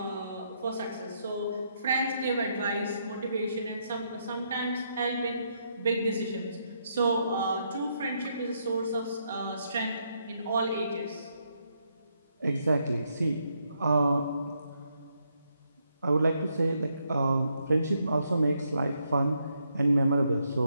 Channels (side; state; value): both; inverted; correlation -0.77